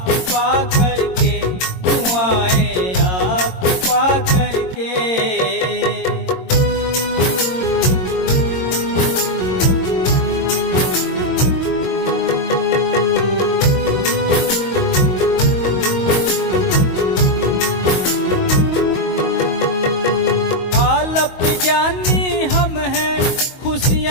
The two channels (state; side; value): late; right; 22 ms